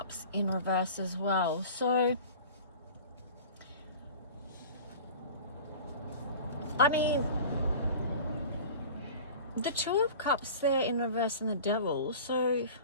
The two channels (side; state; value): both; inverted; correlation -0.39